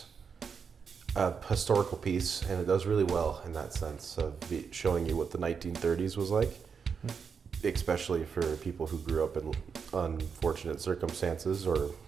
a historical piece, and it does really well in that sense of showing you what the 1930s was like, especially for people who grew up in unfortunate circumstances or,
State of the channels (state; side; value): quieter; left; 6.1 dB